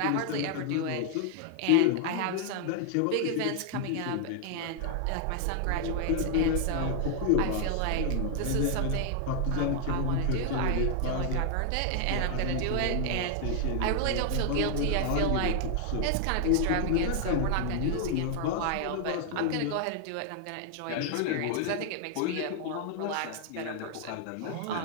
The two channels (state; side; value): different; both; correlation 0.00